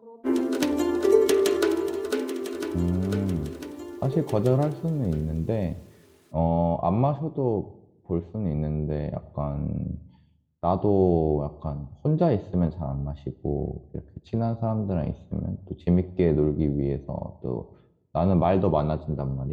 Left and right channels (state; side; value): identical; both; correlation 1.00